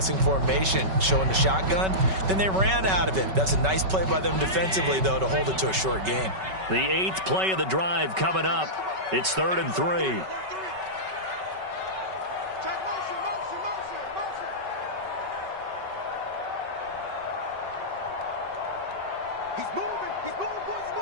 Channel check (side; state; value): left; late; 5.3 ms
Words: formation, showing the shotgun. Then they ran out of it. That's a nice play by them defensively, though, to hold it to a short gain. The 8th play of the drive coming up. It's 3rd and 3.